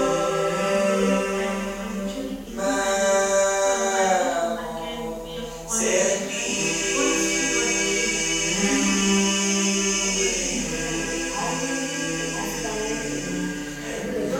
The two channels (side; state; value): both; identical; correlation 1.00